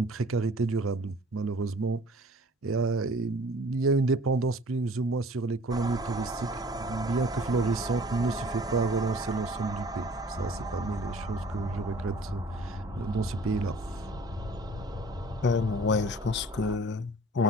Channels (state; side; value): normal; both; correlation 0.49